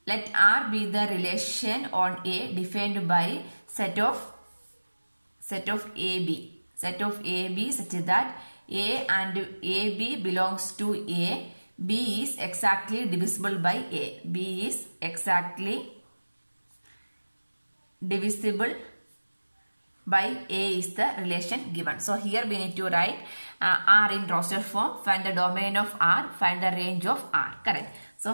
Let R be the relation on A defined by set of AB. Set of AB such that A and AB belongs to A. B is exactly divisible by A. B is exactly divisible by A is the relation given. So here we need to write R in roster form. Find the domain of R. Find the range of R. Correct. So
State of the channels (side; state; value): both; inverted; correlation -1.00